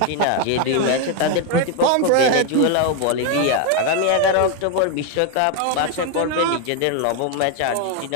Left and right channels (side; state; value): both; different; correlation 0.01